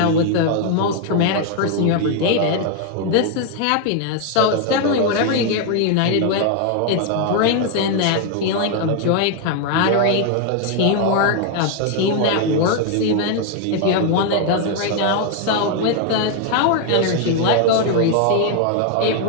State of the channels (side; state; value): both; different; correlation 0.00